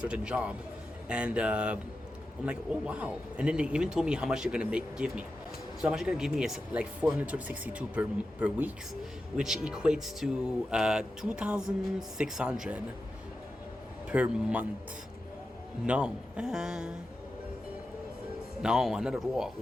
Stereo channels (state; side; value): normal; both; correlation 0.91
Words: job, and I'm like, oh wow. And then they even told me how much they're gonna give me. So how much they're gonna give me is like 462 per weeks, which equates to 2,600 per month. No, not at all.